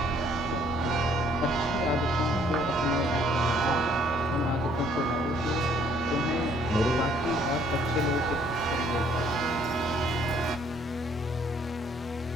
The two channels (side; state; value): both; normal; correlation 0.62